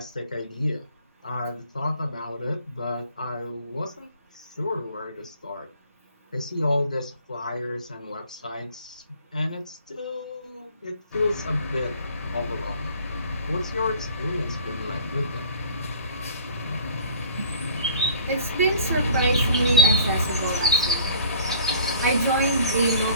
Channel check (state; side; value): inverted; both; correlation -0.50